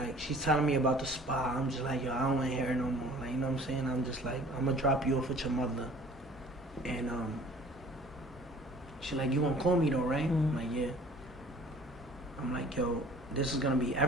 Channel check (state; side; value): normal; both; correlation 0.50